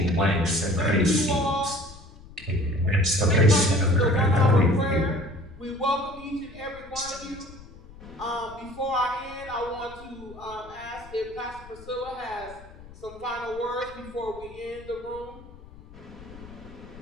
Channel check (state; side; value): noise; left; rumble, 19 dB below the sound